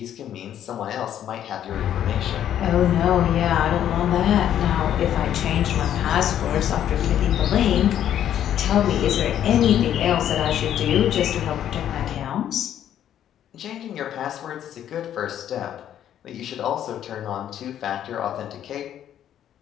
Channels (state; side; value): quieter; right; 10.6 dB